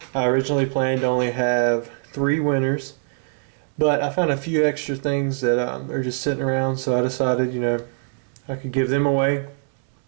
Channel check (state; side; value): silent; left; 63 dB below the other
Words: I originally planned to only have 3 winners, but I found a few extra things that are just sitting around, so I decided, I could give them away